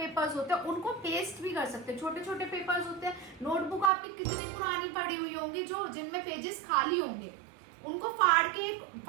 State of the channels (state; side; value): drops out; left; at 3.9 s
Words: होते हैं उनको पेस्ट भी कर सकते हैं। छोटे छोटे पेपर्स होते हैं। नोटबुक आपकी कितनी पुरानी पड़ी हुई होंगी जो जिनमें पेजेस खाली होंगे, उनको फाड़ के